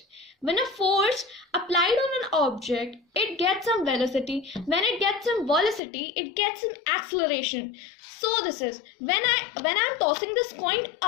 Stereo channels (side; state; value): right; drops out; at 5.8 s